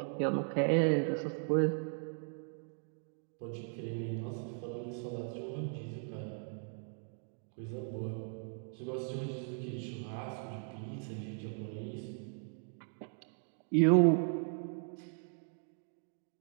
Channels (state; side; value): silent; left; 53 dB below the other